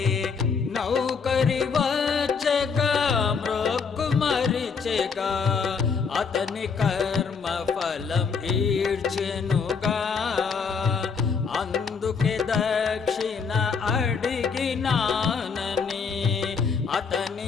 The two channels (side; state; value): right; quieter; 5.6 dB